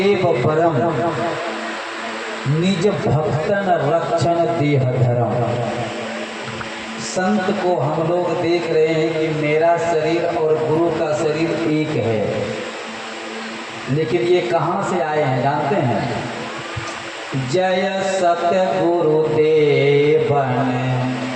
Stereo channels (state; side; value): identical; both; correlation 1.00